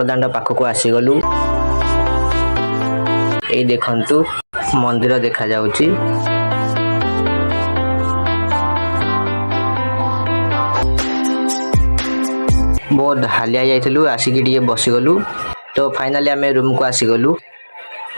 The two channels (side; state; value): both; inverted; correlation -1.00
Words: पाखक आसीगलु। ए देखंतु मंदिर देखा जाउची। बहुत हालिया जाइथिलु आसिकी टिके बसिगलु। तो फाइनाली आमे रूम को आसीगलु।